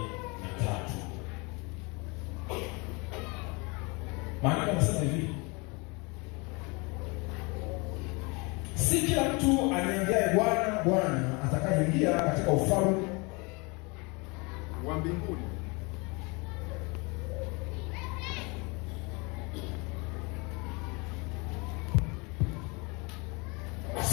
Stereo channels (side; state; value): right; quieter; 28.7 dB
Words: Maana anasema hivi: si kila mtu aniambiaye Bwana, Bwana atakayeingia katika ufalme wa mbinguni,